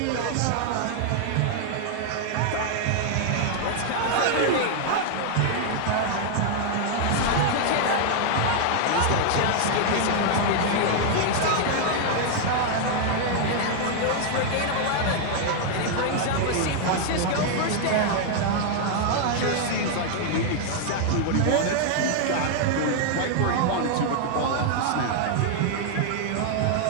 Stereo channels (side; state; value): both; different; correlation 0.00